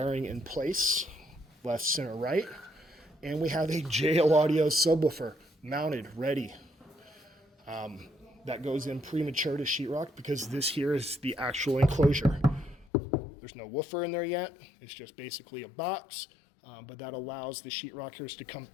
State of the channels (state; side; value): drops out; right; at 12.9 s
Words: in place, left, center, right. And we have a JL Audio subwoofer mounted, ready. That goes in premature to sheetrock because this here is the actual enclosure. There's no woofer in there yet. It's just basically a box, but that allows the sheetrockers to come